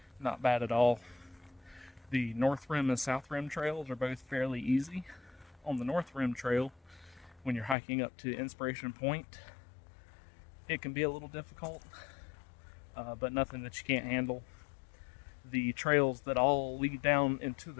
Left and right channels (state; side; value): drops out; right; at 7.8 s